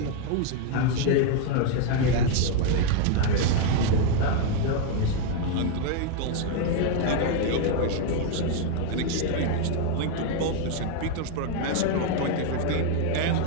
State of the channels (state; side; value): different; both; correlation 0.01